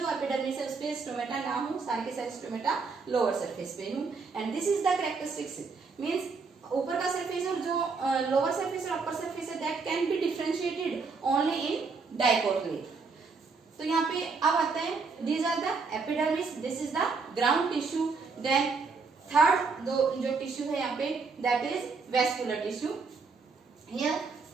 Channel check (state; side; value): quieter; left; 4.6 dB